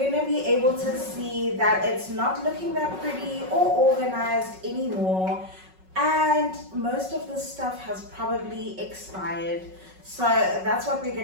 to be able to see that it's not looking that pretty or organized anymore. And most of the stuff has probably expired. So that's what we're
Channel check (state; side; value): late; left; 5.4 ms